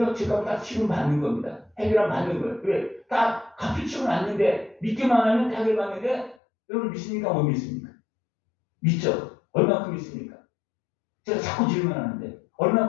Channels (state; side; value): drops out; right; at 6.4 s